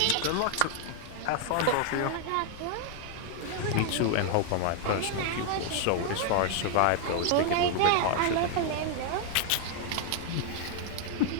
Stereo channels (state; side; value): different; both; correlation 0.00